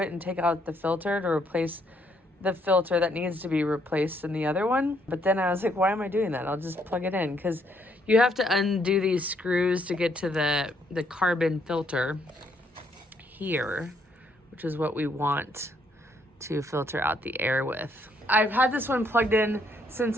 and take out the filter to replace the filter that needs to be replaced in the other one. But then I was like, why am I doing that? I'll just plug it in, because you have to undo these screws to get to the carbon filter here, which is what we want to filter out the air with. I've had this one plugged in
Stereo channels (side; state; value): both; normal; correlation 0.71